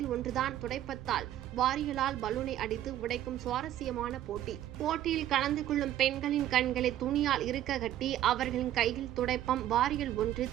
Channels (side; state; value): left; quieter; 12.5 dB